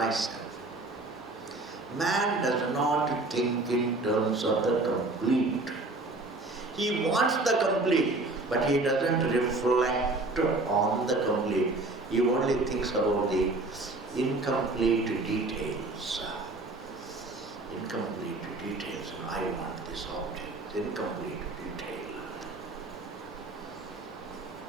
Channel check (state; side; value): quieter; left; 3.0 dB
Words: Man does not think in terms of the complete. He wants the complete, but he doesn't reflect on the complete. He only thinks about the incomplete details. Incomplete details. I want this object. Incomplete detail.